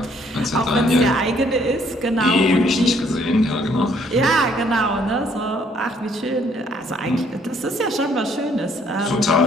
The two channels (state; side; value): normal; both; correlation 0.65